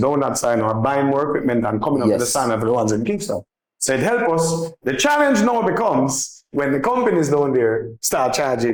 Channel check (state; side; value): identical; both; correlation 1.00